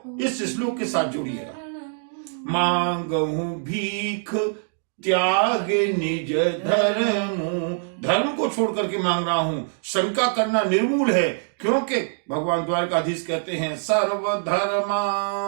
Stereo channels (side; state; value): left; silent; digital silence